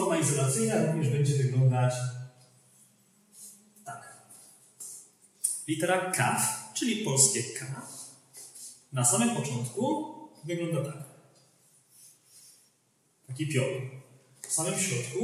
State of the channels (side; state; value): both; identical; correlation 1.00